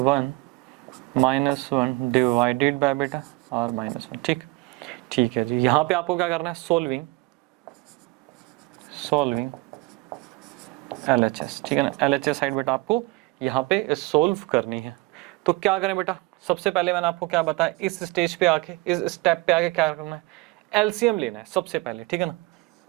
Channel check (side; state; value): left; quieter; 23.1 dB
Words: -1 divided by बेटा आर -1, ठीक है जी। यहाँ पे आपको क्या करना है, सॉल्विंग LHS, ठीक है ना। LHS साइड बेटा आपको यहाँ पे सोल्व करनी है। तो क्या करें बेटा, सबसे पहले मैंने आपको क्या बताया, इस स्टेज पे आके, इस स्टेप पे आके क्या करना है, एलसीएम लेना है सबसे पहले, ठीक है ना।